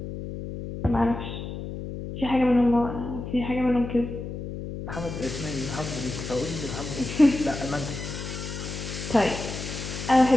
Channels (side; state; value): left; noise; hum, 7 dB below the sound